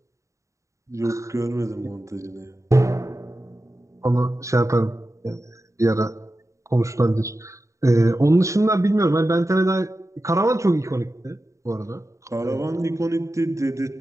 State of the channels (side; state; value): left; late; 0.15 ms